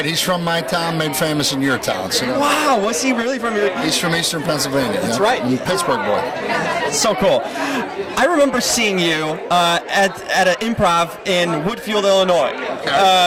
He's from my town, made famous in your town. So wow, was he really from your? He's from Eastern Pennsylvania. That's right. Pittsburgh boy. So cool. I remember seeing you at an improv in Woodfield, Illinois.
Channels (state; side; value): identical; both; correlation 1.00